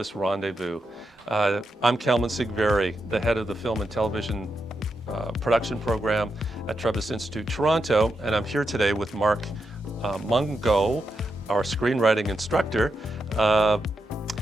Rendezvous. I'm Kalman Sigvari, the head of the film and television production program at Trebas Institute Toronto, and I'm here today with Mark Mungo, our screenwriting instructor.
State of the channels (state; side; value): normal; both; correlation 0.85